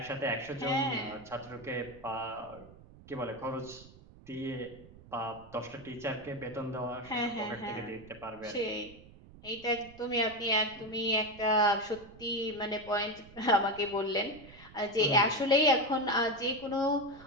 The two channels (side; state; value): right; noise; rumble, 21 dB below the sound